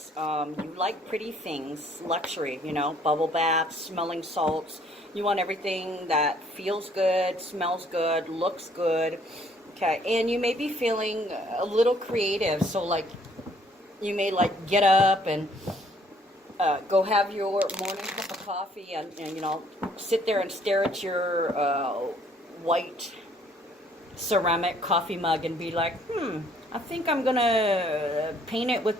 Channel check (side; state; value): both; normal; correlation 0.62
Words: you like pretty things, luxury, bubble baths, smelling salts. You want everything that feels good, smells good, looks good. Okay, and you may be feeling a little creative. So like you may get up and go have your morning cup of coffee and sit there and stare at your white ceramic coffee mug and be like, I think I'm gonna paint it